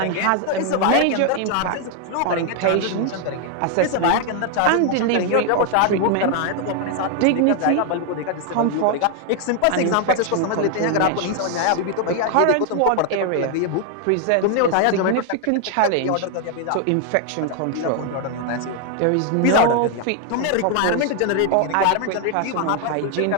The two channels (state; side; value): different; both; correlation 0.00